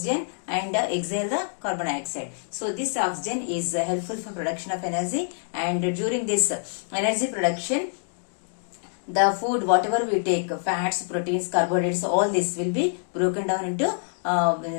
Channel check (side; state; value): right; silent; digital silence